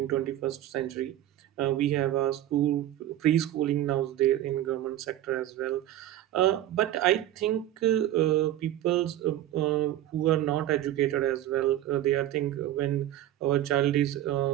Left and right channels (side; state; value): left; quieter; 13.0 dB